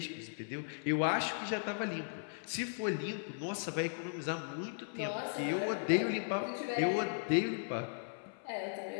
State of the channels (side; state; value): right; silent; 53 dB below the other